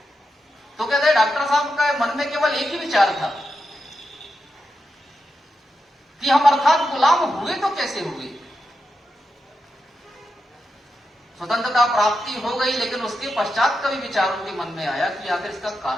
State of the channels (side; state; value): both; normal; correlation 0.88